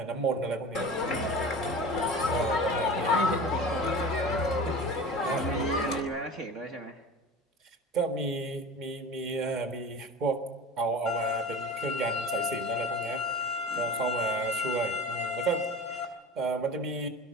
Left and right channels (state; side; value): normal; both; correlation 0.34